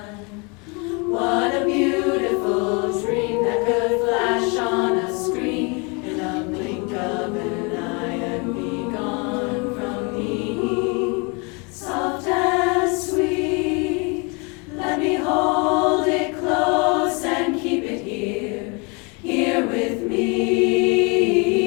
What a beautiful dream that could flash on a screen in a blink of an eye and be gone from me. Soft and sweet, let me hold it close and keep it here, here with me.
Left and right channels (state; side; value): quieter; right; 31.3 dB